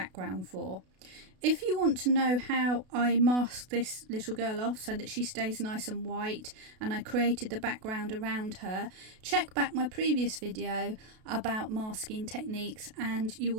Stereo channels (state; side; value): late; left; 32 ms